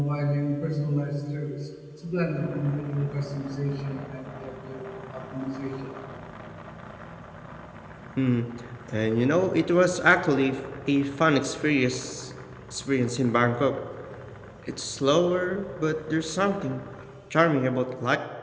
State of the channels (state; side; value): identical; both; correlation 1.00